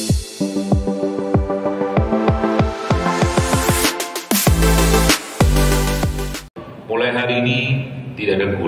Mulai hari ini tidak ada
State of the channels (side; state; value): both; identical; correlation 1.00